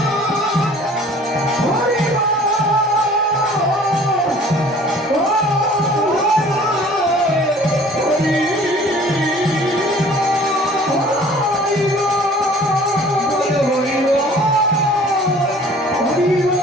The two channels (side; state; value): both; normal; correlation 0.50